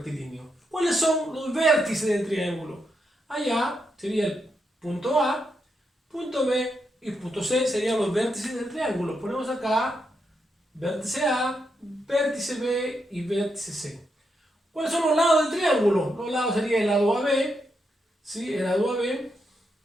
¿Cuáles son los vértices del triángulo? Allá sería el punto A, punto B y punto C serían los vértices del triángulo. Ponemos acá vértice A, vértice B y vértice C. ¿Cuáles son los lados del triángulo? Los lados serían el lado AB, ¿sí? El lado AB.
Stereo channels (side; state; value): both; normal; correlation 0.82